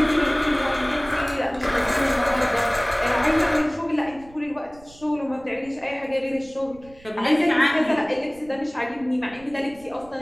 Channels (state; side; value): noise; right; rumble, 23 dB below the sound